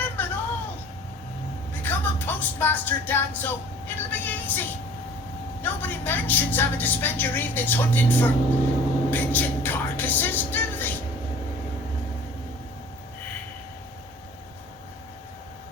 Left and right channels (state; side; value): normal; both; correlation 0.47